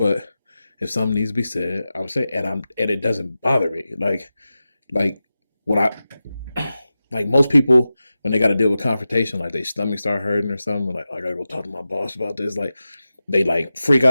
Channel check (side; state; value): both; inverted; correlation -0.93